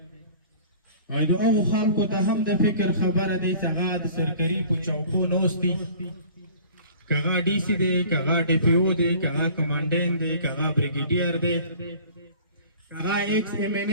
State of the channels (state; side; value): inverted; both; correlation -0.47